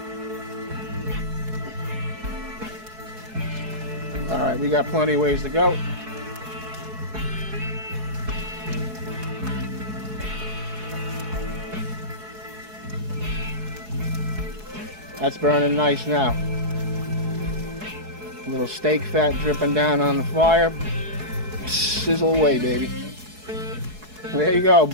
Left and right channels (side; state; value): left; late; 4.7 ms